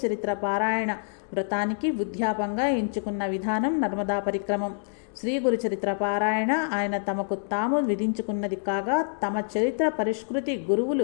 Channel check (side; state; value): right; silent; digital silence